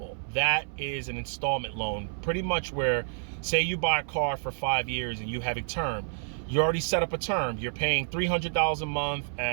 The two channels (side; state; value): left; silent; 57 dB below the other